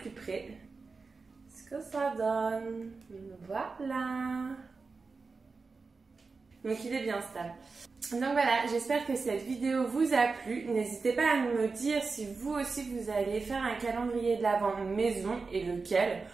près ce que ça donne. Voilà. Donc il est bien stable. Donc voilà, j'espère que cette vidéo vous a plu. N'hésitez pas à me dire si vous aussi vous allez faire un calendrier de l'Avent maison et lequel.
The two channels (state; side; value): quieter; left; 4.3 dB